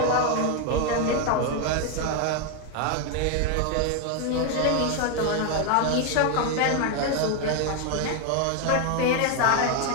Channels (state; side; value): different; both; correlation 0.01